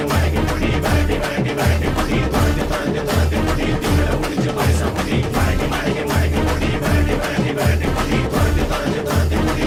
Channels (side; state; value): both; identical; correlation 1.00